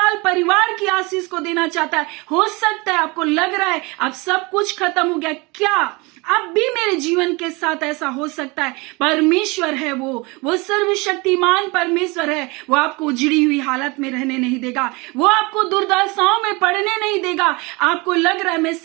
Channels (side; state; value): left; quieter; 26.0 dB